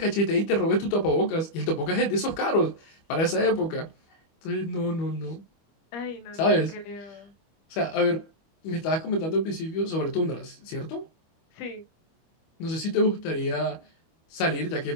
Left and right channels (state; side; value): late; right; 25 ms